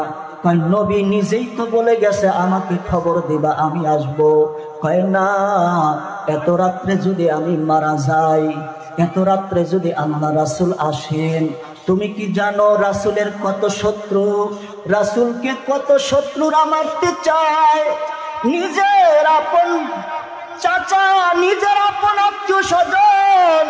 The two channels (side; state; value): both; identical; correlation 1.00